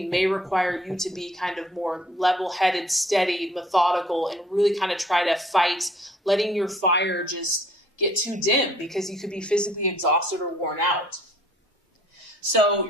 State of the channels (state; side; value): normal; both; correlation 0.58